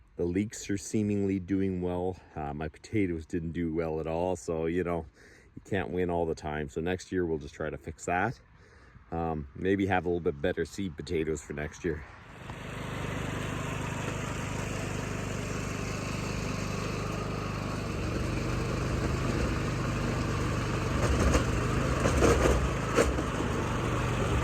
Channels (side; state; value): both; identical; correlation 1.00